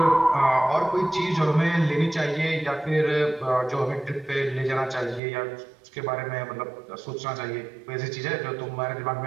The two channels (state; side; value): drops out; left; at 5.2 s